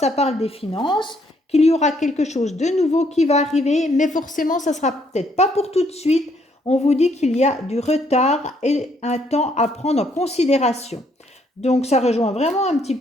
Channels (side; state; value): both; normal; correlation 0.69